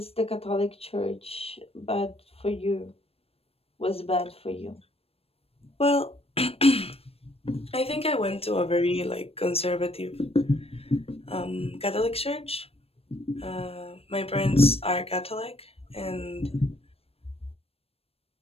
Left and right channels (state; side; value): late; right; 0.28 ms